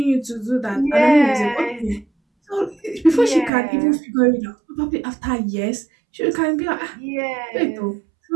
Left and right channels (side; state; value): left; drops out; at 3.5 s